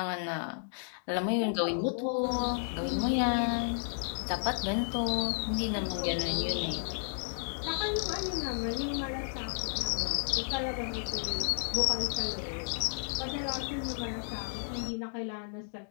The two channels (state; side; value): silent; right; digital silence